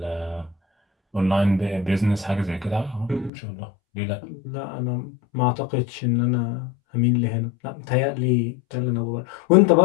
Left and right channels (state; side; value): drops out; right; at 3.3 s